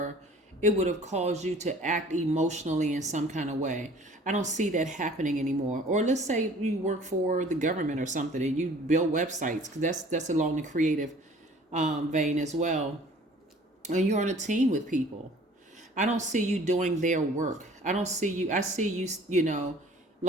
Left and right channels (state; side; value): normal; both; correlation 0.50